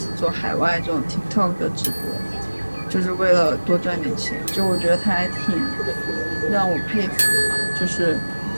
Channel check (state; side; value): inverted; both; correlation -1.00